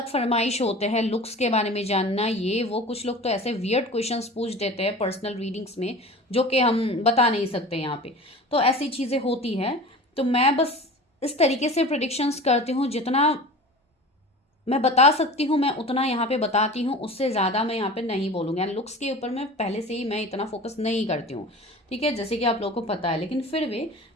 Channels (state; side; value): normal; both; correlation 0.37